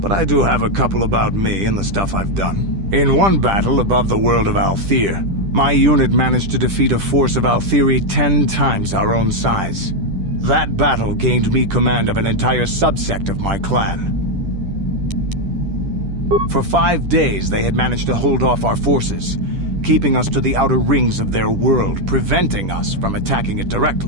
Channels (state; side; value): late; left; 10 ms